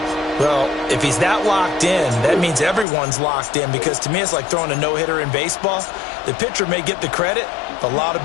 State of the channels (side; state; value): right; drops out; at 2.9 s